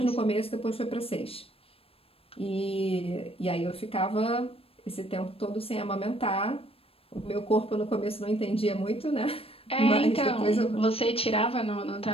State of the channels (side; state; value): right; late; 0.28 ms